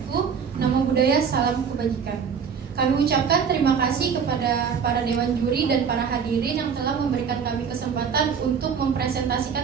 Namo Buddhaya, salam kebajikan. Kami ucapkan terima kasih kepada para dewan juri dan para hadirin yang telah memberikan kami kesempatan untuk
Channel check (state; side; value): quieter; left; 6.7 dB